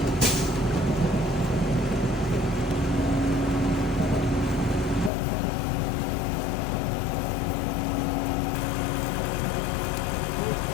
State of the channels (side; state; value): right; drops out; at 5.1 s